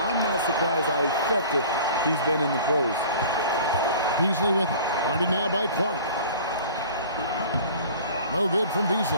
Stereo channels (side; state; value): both; inverted; correlation -0.44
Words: I'm not surprised how effective he's been in the pros. Beasley with it. Guarded now by Clark. No good from Beasley.